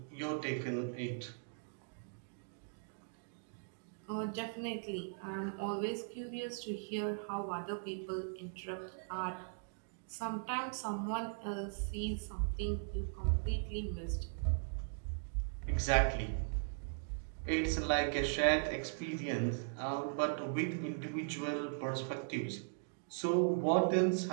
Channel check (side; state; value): left; silent; digital silence